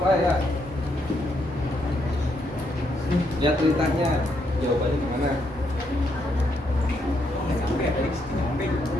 Pak ya. Lihat ceritanya, jawabannya gimana?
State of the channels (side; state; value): both; normal; correlation 0.76